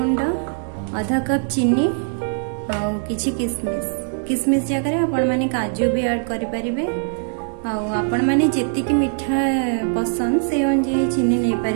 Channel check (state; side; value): silent; left; digital silence